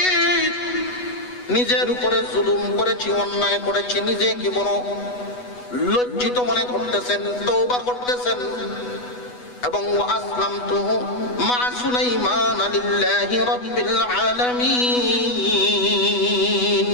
নিজের উপরে জুলুম করেছি, অন্যায় করেছি। নিজেকে বড় লজ্জিত মনে করতেছেন, তওবা করতেছেন এবং আসলামতু মা সুলাইমান লিল্লাহি রাব্বিল আলামিন,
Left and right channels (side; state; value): right; late; 8.1 ms